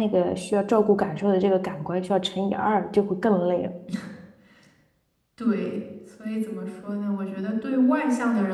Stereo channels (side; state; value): both; identical; correlation 1.00